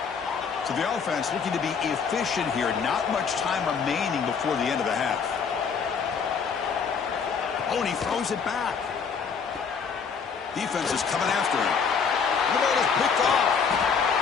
So the offense looking to be efficient here. Not much time remaining before the end of the half. Oh, and he throws it back. Defense is coming after him. The ball is picked off.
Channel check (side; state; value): right; quieter; 6.1 dB